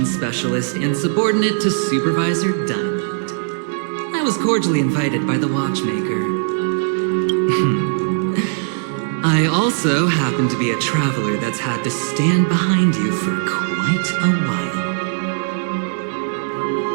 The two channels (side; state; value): left; silent; 62 dB below the other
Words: specialist and subordinate to Supervisor Diamond. I was cordially invited by the watchmaker. I also happen to be a traveler that's had to stand behind you for quite a while.